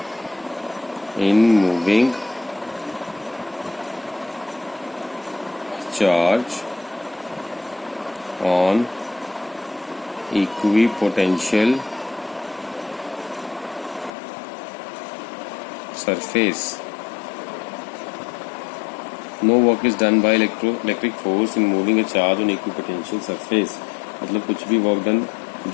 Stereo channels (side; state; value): right; drops out; at 14.1 s